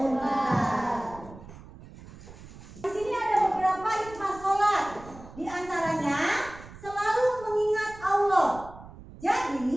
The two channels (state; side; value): noise; right; rumble, 17 dB below the sound